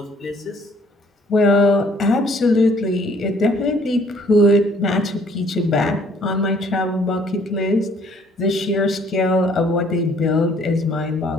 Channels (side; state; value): both; normal; correlation 0.61